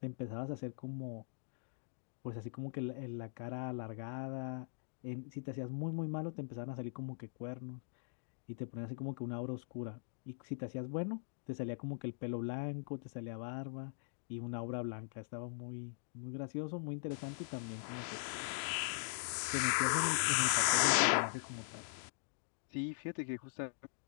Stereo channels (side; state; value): right; silent; digital silence